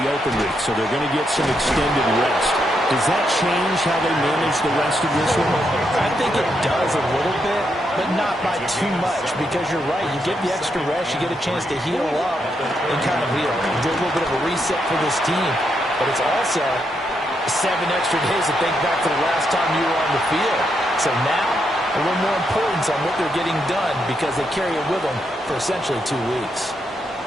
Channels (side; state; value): both; normal; correlation 0.80